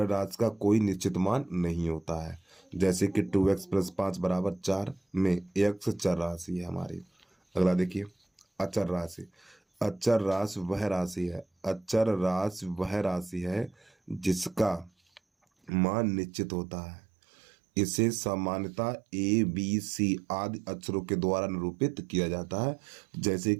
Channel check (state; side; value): drops out; left; at 15.7 s